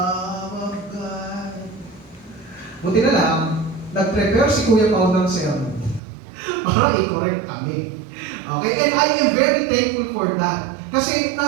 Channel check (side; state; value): left; drops out; at 6.0 s